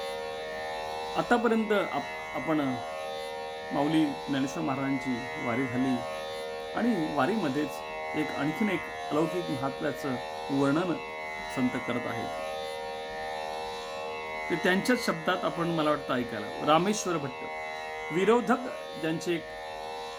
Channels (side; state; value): both; identical; correlation 1.00